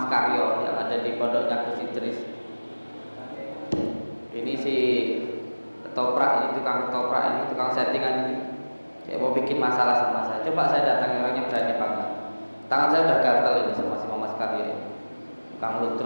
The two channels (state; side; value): inverted; both; correlation -1.00